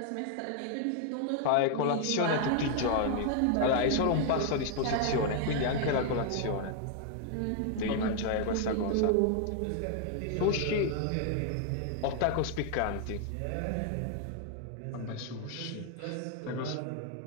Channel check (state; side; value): different; both; correlation 0.00